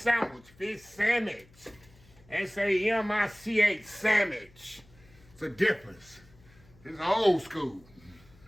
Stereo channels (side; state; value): left; noise; hum, 27 dB below the sound